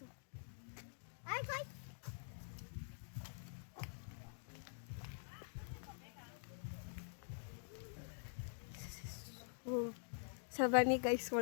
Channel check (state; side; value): silent; right; digital silence